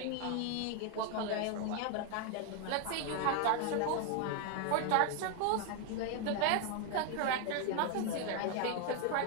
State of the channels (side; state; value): both; different; correlation 0.00